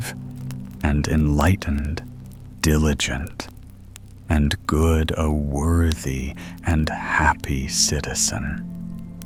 and enlightened, diligent, and good, a worthy and happy citizen.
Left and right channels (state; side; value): identical; both; correlation 1.00